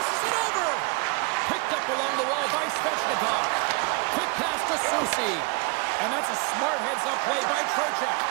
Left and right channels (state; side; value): quieter; left; 29.9 dB